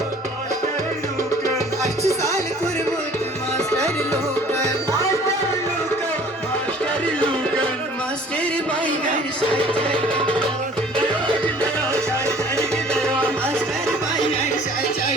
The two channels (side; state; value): both; normal; correlation 0.51